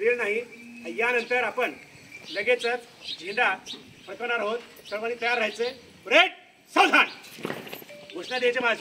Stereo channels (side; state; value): both; identical; correlation 1.00